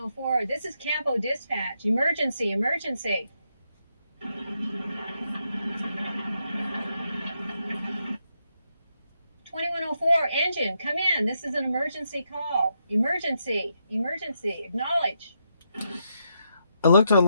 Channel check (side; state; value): both; inverted; correlation -0.81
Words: this is Campo Dispatch. Emergency, emergency. 2104, engine, come in. This is an emergency call. Emergency, emergency, acknowledge. I looked